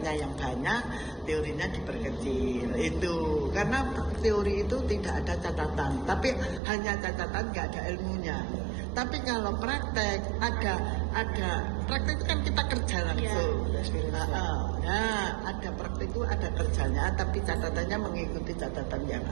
yang banyak, teorinya diperkecil. Itu karena teori itu tidak ada catatan, tapi hanya catatan nggak ada ilmunya. Tapi kalau praktek ada praktek itu kan kita kerja langsung. Nah, ada praktek itu ada kerjanya, tapi catatannya mengikuti catatan yang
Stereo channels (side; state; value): left; drops out; at 6.6 s